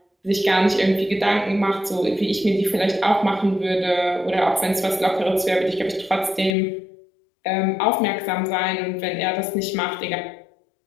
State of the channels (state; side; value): drops out; right; at 6.6 s